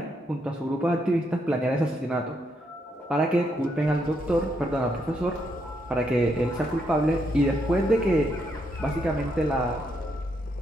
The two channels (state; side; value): normal; both; correlation 0.77